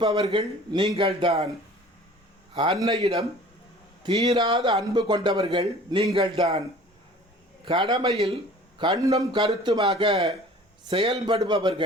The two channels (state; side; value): normal; both; correlation 0.47